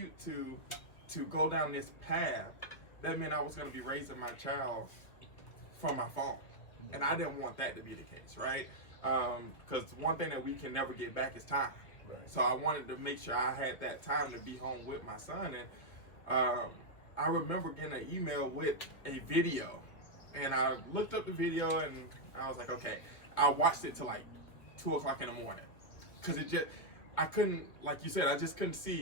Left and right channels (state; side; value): late; right; 2.5 ms